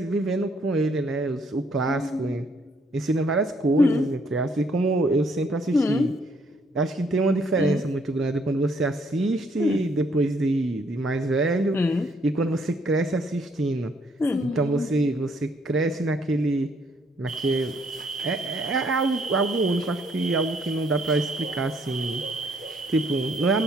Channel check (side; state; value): both; normal; correlation 0.67